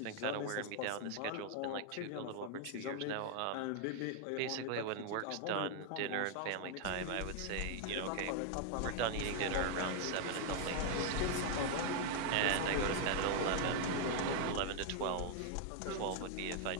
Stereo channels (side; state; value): both; different; correlation 0.00